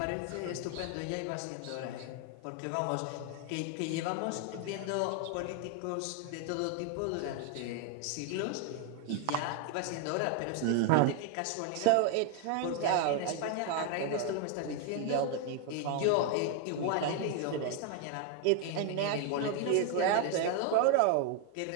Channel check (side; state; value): both; different; correlation 0.00